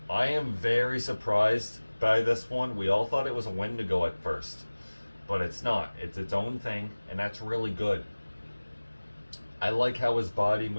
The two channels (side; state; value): both; inverted; correlation -1.00